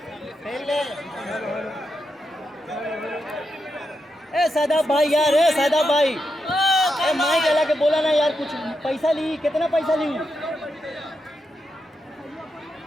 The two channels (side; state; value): both; normal; correlation 0.85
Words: सादाब भाई यार, सादाब भाई माइक अला के बोला ना यार। कुछ पैसा ली, कितना पैसा ली?